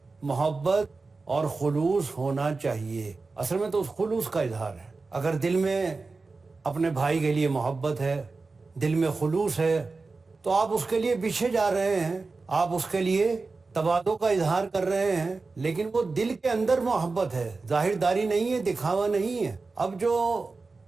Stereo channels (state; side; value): quieter; left; 3.9 dB